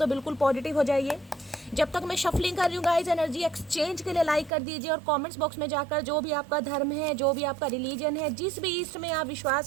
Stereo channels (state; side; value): drops out; left; at 4.5 s